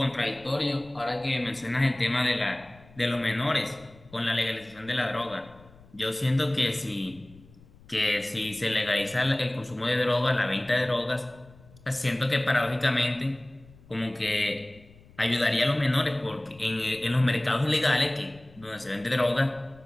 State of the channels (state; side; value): noise; left; rumble, 24 dB below the sound